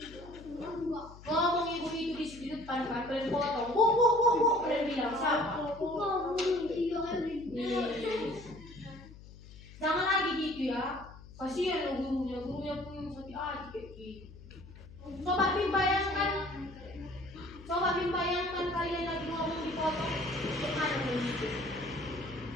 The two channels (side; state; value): left; noise; hum, 18 dB below the sound